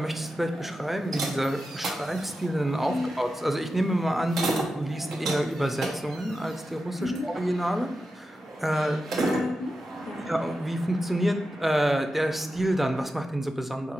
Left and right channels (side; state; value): both; normal; correlation 0.91